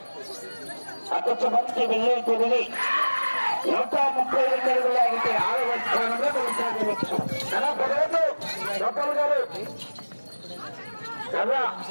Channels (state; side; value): inverted; both; correlation -1.00